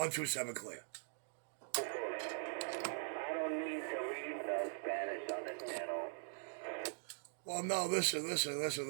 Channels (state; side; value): silent; left; digital silence